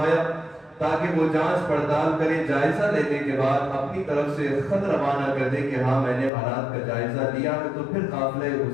تاکہ وہ جانچ پڑتال کریں، جائزہ لینے کے بعد اپنی طرف سے خط روانہ کر دیں کہ ہاں میں نے حالات کا جائزہ لیا ہے، تو پھر قافلہ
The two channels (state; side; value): drops out; right; at 6.3 s